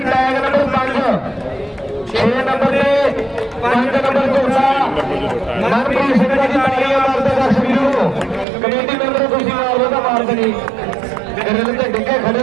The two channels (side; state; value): left; drops out; at 8.5 s